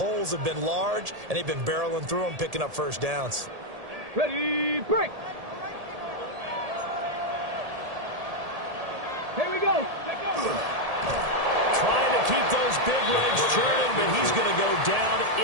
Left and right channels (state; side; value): late; left; 1.7 ms